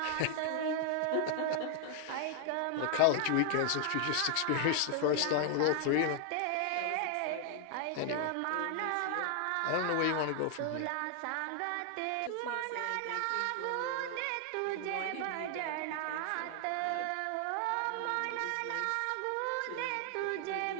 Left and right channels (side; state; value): both; different; correlation 0.00